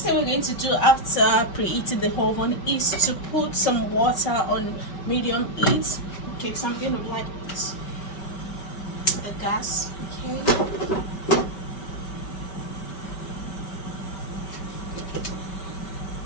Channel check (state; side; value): late; right; 5.2 ms